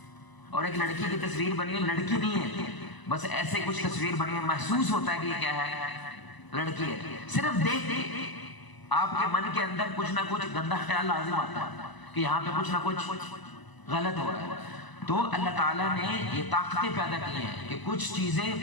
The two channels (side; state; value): right; late; 1.0 ms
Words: اور ایک لڑکی کی تصویر بنی ہے، لڑکی نہیں ہے، بس ایسے کچھ تصویر بنی ہے، محسوس ہوتا ہے کہ یہ کیا ہے؟ لڑکی ہے۔ صرف دیکھ آپ کے من کے اندر کچھ نہ کچھ گندا خیال لازم آتا ہے کہ یہاں پہ کچھ نہ کچھ غلط ہو رہا ہے۔ تو اللہ تعالیٰ نے یہ طاقتیں پیدا کی ہیں کہ کچھ